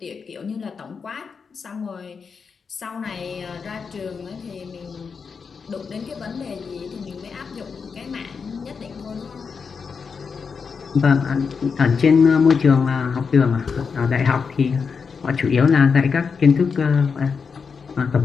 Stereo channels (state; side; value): quieter; right; 5.6 dB